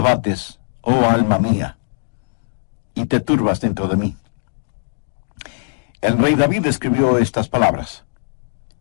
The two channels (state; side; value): silent; right; digital silence